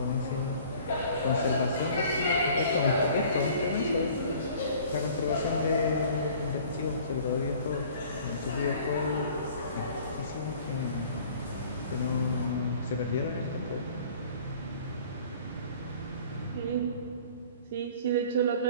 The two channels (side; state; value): both; inverted; correlation -0.50